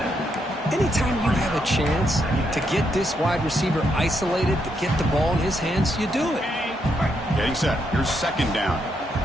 Anytime you have a chance to get this wide receiver isolated, to get the ball in his hands, you do it. Getting set. Here's second down.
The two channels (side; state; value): both; normal; correlation 0.78